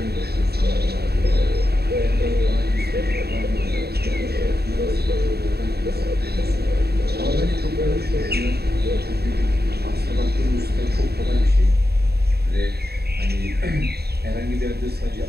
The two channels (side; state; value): left; late; 0.47 ms